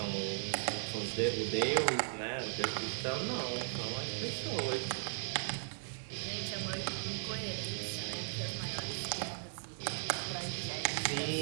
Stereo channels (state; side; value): silent; left; digital silence